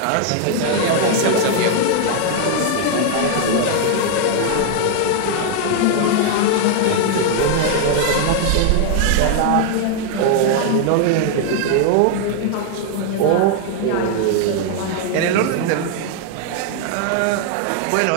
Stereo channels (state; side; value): different; both; correlation 0.00